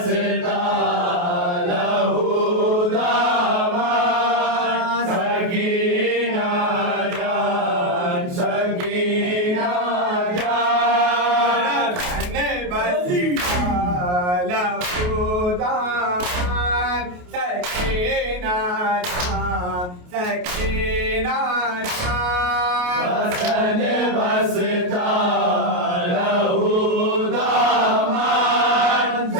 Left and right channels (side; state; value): left; late; 28 ms